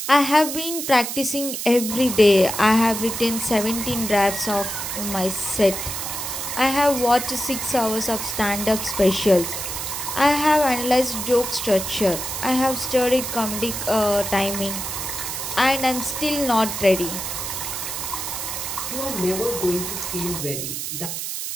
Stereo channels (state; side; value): noise; right; hiss, 5 dB below the sound